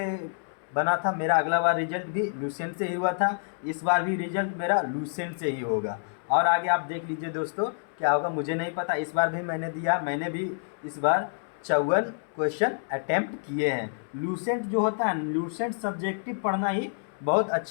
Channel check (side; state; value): right; silent; 59 dB below the other